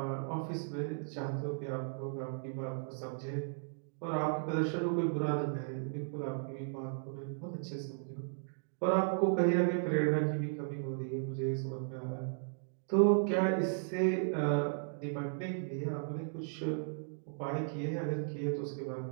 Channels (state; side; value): silent; left; digital silence